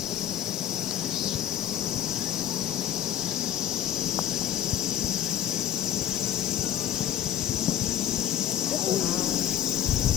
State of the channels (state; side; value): quieter; right; 11.4 dB